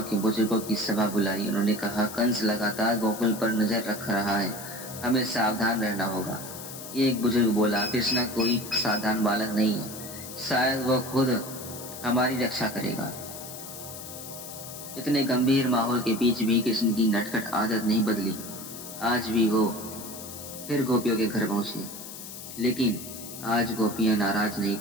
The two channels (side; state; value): left; noise; hiss, 12 dB below the sound